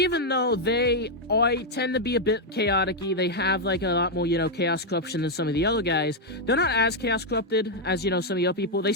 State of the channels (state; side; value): normal; both; correlation 0.00